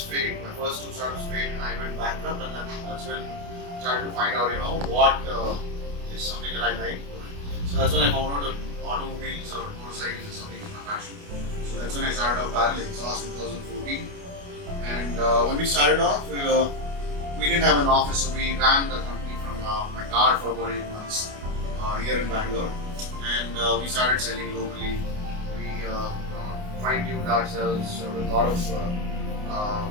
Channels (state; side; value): late; left; 28 ms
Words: failed. My first two startups failed, and I went bankrupt, and that's when I started to find out, what is something that I like doing. So that's when I found out that automobiles or motorcycles is something in my passion. So that's when I started off Barrel Exhaust in 2014. And when we started off, we didn't have an office, so we ran the company from my car for about 8 months here in Bangalore, and we started selling locally. We fine-tuned ourselves with a lot of